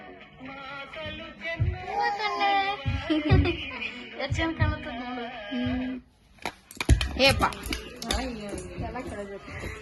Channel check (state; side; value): identical; both; correlation 1.00